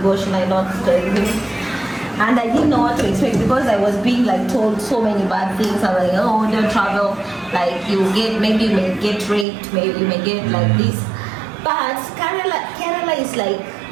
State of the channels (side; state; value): left; drops out; at 9.5 s